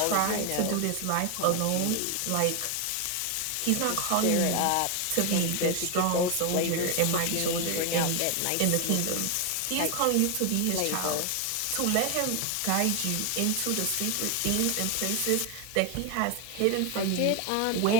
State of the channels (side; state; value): both; different; correlation 0.01